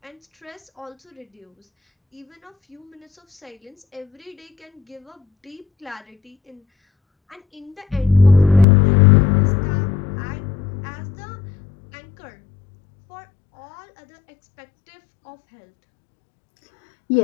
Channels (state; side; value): drops out; right; at 8.7 s